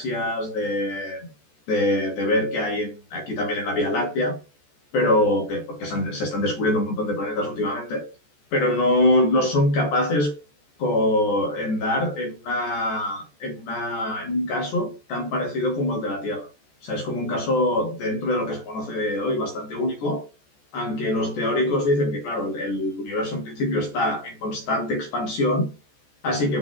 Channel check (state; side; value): late; right; 14 ms